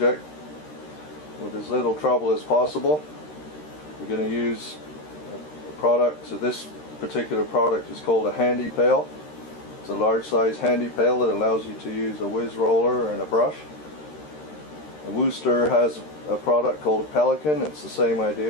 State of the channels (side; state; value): right; late; 13 ms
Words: with as little trouble as possible. We're going to use a product. So this particular product is called a handy pail. It's a large size handy pail that allows you to use a whiz roller and a brush. A Wooster has a product called a Pelican. It's the same